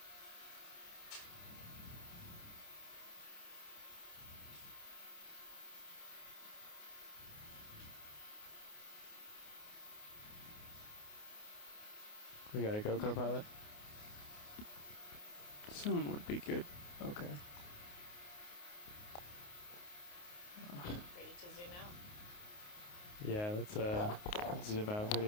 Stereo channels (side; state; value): right; late; 28 ms